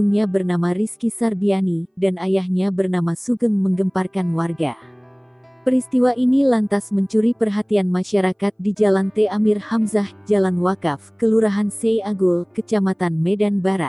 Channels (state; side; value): identical; both; correlation 1.00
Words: bernama Rizky Sarbiani, dan ayahnya bernama Sugeng menggemparkan warga. Peristiwa ini lantas mencuri perhatian masyarakat di Jalan T. Amir Hamzah, Jalan Wakaf, Kelurahan Sei Agul, Kecamatan Medan